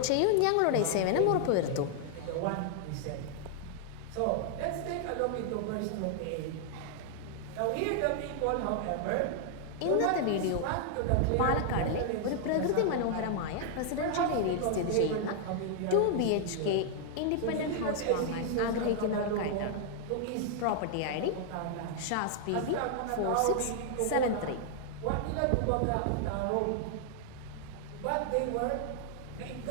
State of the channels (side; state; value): both; different; correlation 0.00